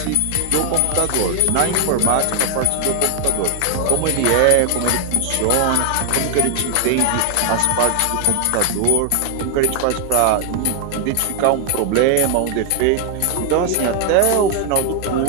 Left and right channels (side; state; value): both; different; correlation 0.01